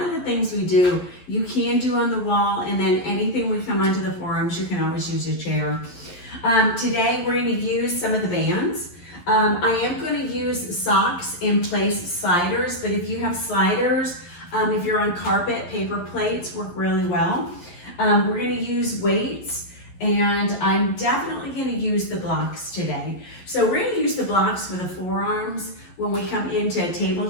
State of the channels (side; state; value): right; late; 11 ms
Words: of the things we do, you can do on the wall, and then anything we come onto the forearms, you can always use a chair. Today we're gonna use some of the bands. I am gonna use socks in place sliders, but if you have sliders, if you're on carpet, paper plates work really well. We're gonna use weights, and I'm definitely gonna use the blocks today. So we're gonna use the blocks for the forearms when we come into a